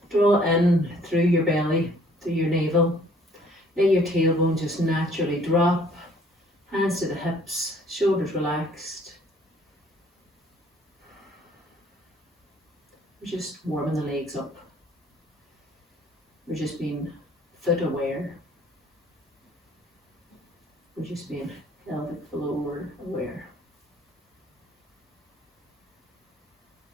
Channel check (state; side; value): normal; both; correlation 0.59